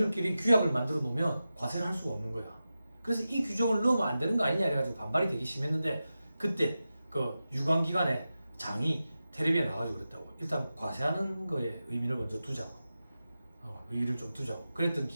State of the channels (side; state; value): both; inverted; correlation -0.93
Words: 규약을 만들어 놓으면 과세를 할 수가 없는 거야. 그래서 이 규정을 넣으면 안 되는 거 아니냐 해가지고 반발이 되게 심했는데 그때 그 유관기관의 장이 텔레비에 나와가지고 그랬다고. 일단 과세하는 거에 의미를 먼저 두자고. 의의를 좀 두자고. 그랬던